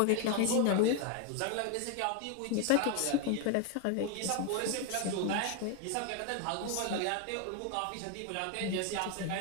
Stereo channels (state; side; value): different; both; correlation 0.01